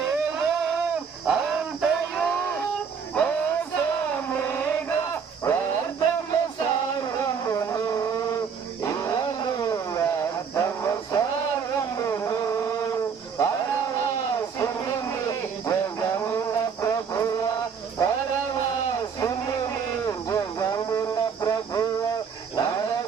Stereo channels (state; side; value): quieter; left; 6.4 dB